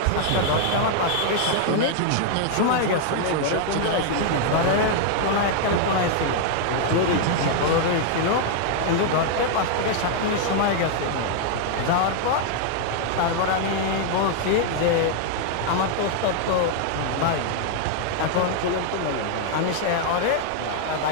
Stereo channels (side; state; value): both; different; correlation 0.00